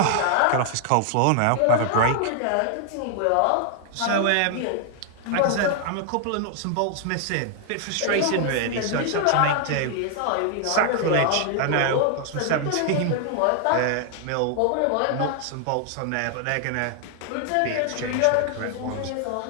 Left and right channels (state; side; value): different; both; correlation 0.00